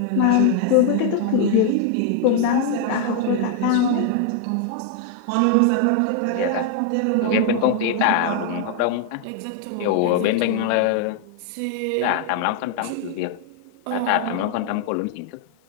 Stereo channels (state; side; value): different; both; correlation 0.00